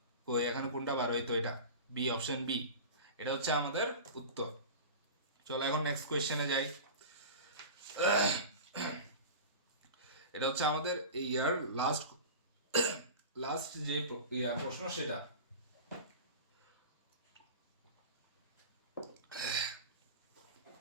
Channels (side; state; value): both; inverted; correlation -0.32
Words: কই, এখানে কোনটা 12? এই তো এটা বি, অপশন বি, এটা হচ্ছে আমাদের উত্তর। চলো এখন নেক্সট কোয়েশ্চেনে যাই। এটা হচ্ছে আমাদের ইয়ার লাস্ট যে প্রশ্ন সেটা।